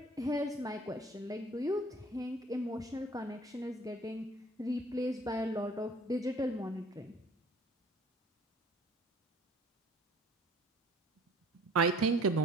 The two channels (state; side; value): normal; both; correlation 0.51